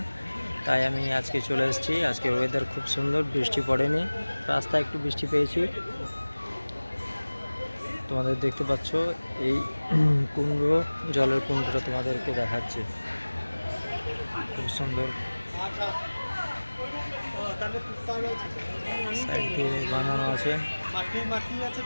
তাই আমি আজকে চলে এসেছি। আজকে ওয়েদার খুব সুন্দর, বৃষ্টি পড়েনি, রাস্তায় একটু বৃষ্টি পেয়েছি। তোমাদের দেখতে পাচ্ছ এই কুণ্ড, জলের কুণ্ডটা তোমাদেরকে দেখাচ্ছে, খুব সুন্দর। সাইড দিয়ে বানানো আছে।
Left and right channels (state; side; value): inverted; both; correlation -1.00